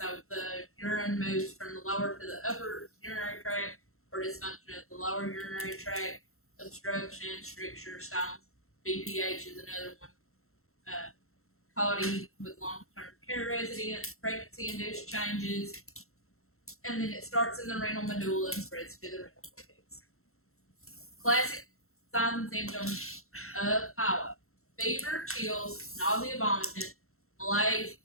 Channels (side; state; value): right; late; 0.62 ms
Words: the urine moves from the lower to the upper urinary tract, or dysfunction of the lower urinary tract, obstruction, stricture, stones. BPH is another one. CODI with long-term care residents, pregnancy-induced changes, and then it starts in the renal medulla and spreads to the renal cortex. Classic signs and symptoms of pyelonephritis: fever, chills, nausea, vomiting, malaise,